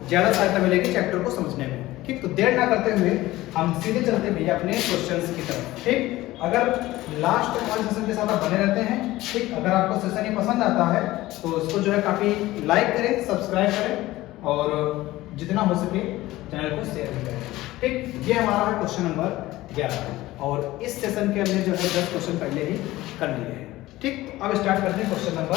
ज़्यादा सहायता मिलेगी चैप्टर को समझने में। ठीक, तो देर ना करते हुए हम सीधे चलते भैया अपने क्वेश्चंस की तरफ। ठीक, अगर लास्ट वाले सेशन के साथ आप बने रहते हैं, ठीक, अगर आपको सेशन ये पसंद आता है तो इसको जो है काफ़ी लाइक करें, सब्सक्राइब करें और जितना हो सके चैनल को शेयर भी करें। ठीक, ये हमारा है क्वेश्चन नंबर 11 और इस सेशन के हमने जो है 10 क्वेश्चन पहले ही कर लिए हैं। ठीक, अब स्टार्ट करते हैं क्वेश्चन नंबर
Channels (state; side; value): quieter; right; 17.3 dB